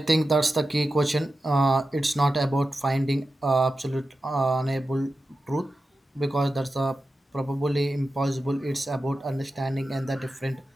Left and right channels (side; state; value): both; normal; correlation 0.92